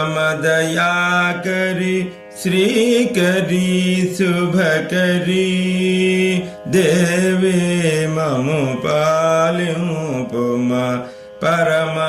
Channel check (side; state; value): both; identical; correlation 1.00